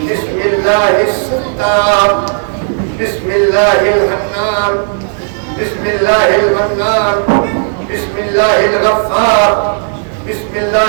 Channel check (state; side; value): silent; left; digital silence